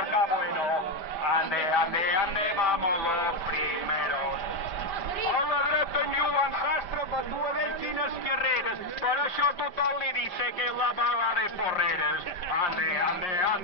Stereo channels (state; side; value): late; right; 5.1 ms